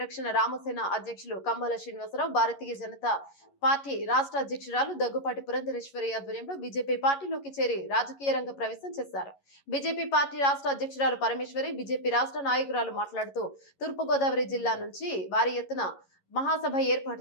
రామసేన అధ్యక్షులు కమ్మల శ్రీనివాసరావు భారతీయ జనతా పార్టీ రాష్ట్ర అధ్యక్షురాలు దగ్గుపాటి పురంధరేశ్వరి ఆధ్వర్యంలో బీజేపీ పార్టీలోకి చేరి రాజకీయ రంగ ప్రవేశం చేశారు. బీజేపీ పార్టీ రాష్ట్ర అధ్యక్షురాలు పరమేశ్వరి బీజేపీ రాష్ట్ర నాయకురాలు మాట్లాడుతూ తూర్పుగోదావరి జిల్లా నుంచి భారీ ఎత్తున మహాసభ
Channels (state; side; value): late; right; 11 ms